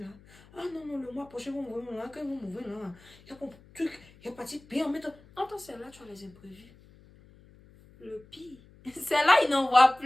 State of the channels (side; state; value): left; noise; hum, 25 dB below the sound